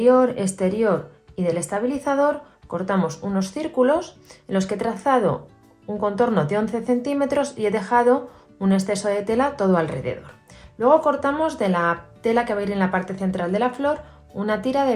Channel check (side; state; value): both; identical; correlation 1.00